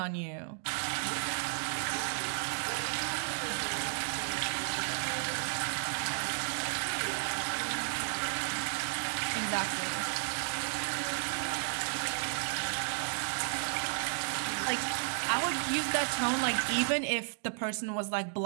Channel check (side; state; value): left; silent; digital silence